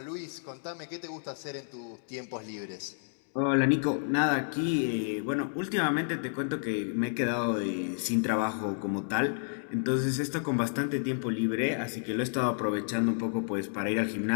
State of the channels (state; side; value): silent; right; digital silence